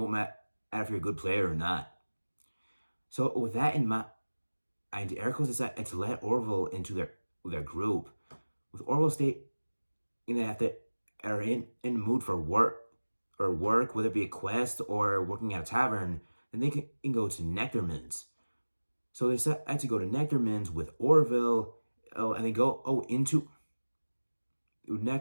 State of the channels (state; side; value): inverted; both; correlation -1.00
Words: matter if you're a good player or not. So with that in mind, Aracos decided to let Orville into their group. With Orville stating that if they are in the mood for work, whether it be a quest or working at a tavern, then they can go to nectarmans. So they decided to go to nectarmans with Orville, and they go into